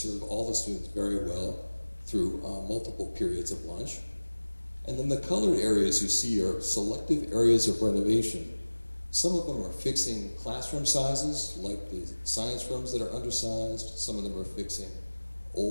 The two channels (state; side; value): inverted; both; correlation -1.00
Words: all the students very well through multiple periods of lunch. And then the colored areas you see are selective areas of renovation. Some of them are fixing classroom sizes, like the science rooms that are undersized. Some of them are fixing